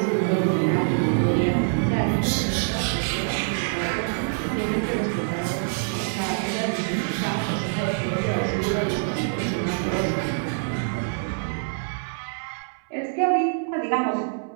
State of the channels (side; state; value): left; silent; 62 dB below the other